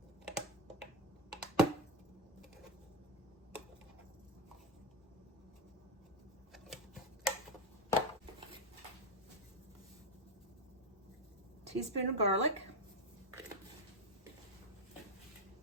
Teaspoon of garlic.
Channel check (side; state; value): both; normal; correlation 0.07